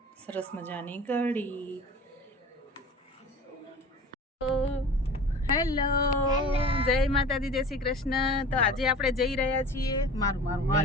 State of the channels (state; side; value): normal; both; correlation 0.40